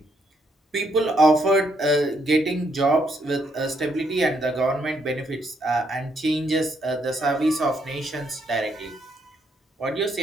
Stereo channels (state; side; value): normal; both; correlation 0.74